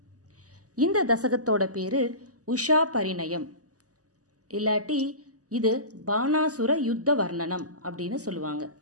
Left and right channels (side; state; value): left; late; 0.67 ms